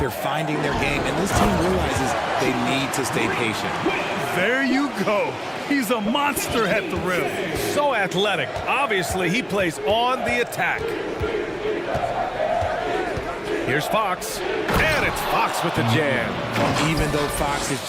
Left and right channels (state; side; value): identical; both; correlation 1.00